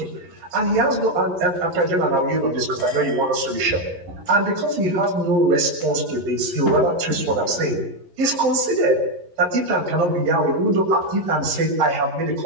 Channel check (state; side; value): late; left; 11 ms